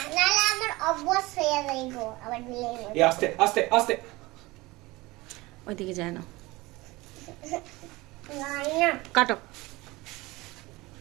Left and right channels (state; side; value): quieter; left; 21.4 dB